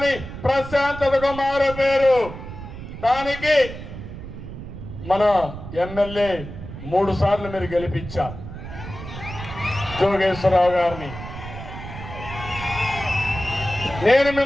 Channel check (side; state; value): right; noise; rumble, 11 dB below the sound